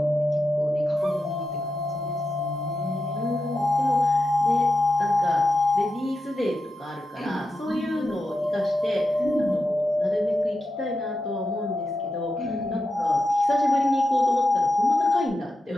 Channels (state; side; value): normal; both; correlation 0.89